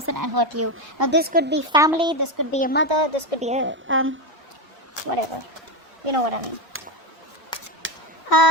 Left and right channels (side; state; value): both; normal; correlation 0.13